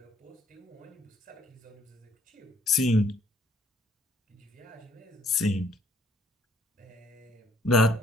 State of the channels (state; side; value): normal; both; correlation 0.64